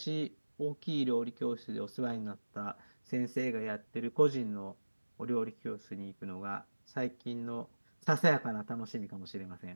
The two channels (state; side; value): inverted; both; correlation -1.00